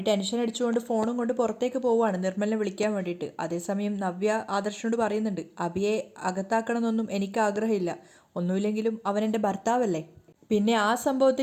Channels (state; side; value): identical; both; correlation 1.00